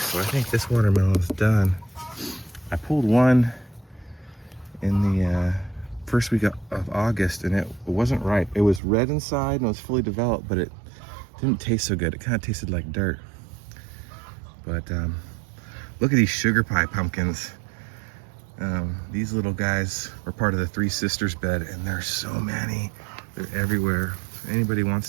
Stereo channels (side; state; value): left; drops out; at 8.8 s